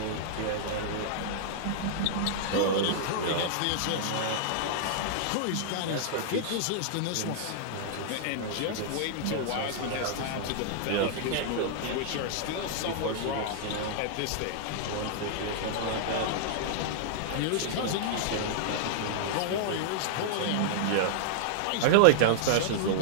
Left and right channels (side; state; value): both; different; correlation -0.01